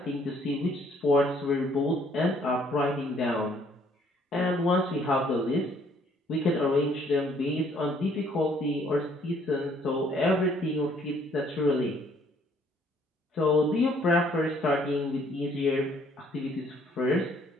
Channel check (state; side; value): normal; both; correlation 0.63